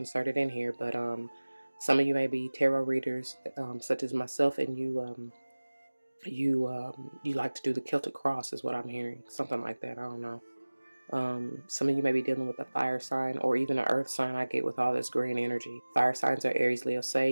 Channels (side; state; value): both; inverted; correlation -1.00